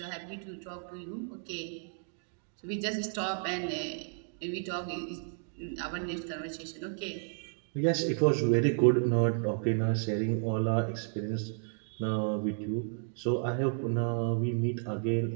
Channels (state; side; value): silent; left; 56 dB below the other